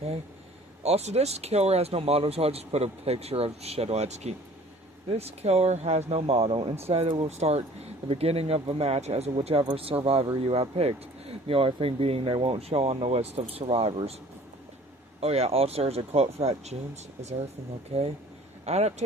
Also, this killer has no model, so I'll just put a picture of Shadowetsky. This killer has no model. Instead, it will start the beginning of the match as whichever survivor you have picked. The only thing being they won't show on the list of survivors. Oh yeah, also there's a quote for that. James, is everything okay?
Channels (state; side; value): normal; both; correlation 0.50